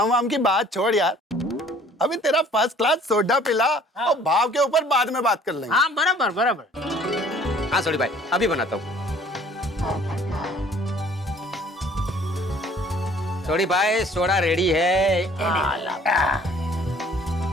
वाम की बात छोड़ यार, अभी तेरा फर्स्ट क्लास सोडा पिला और भाव के ऊपर बाद में बात कर लेंगे। हाँ बराबर बराबर। हाँ सॉरी भाई, अभी बनाता हूँ। सॉरी भाई, सोडा रेडी है।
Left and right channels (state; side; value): normal; both; correlation 0.55